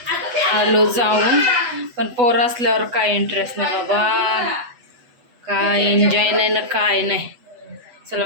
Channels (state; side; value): late; left; 8.1 ms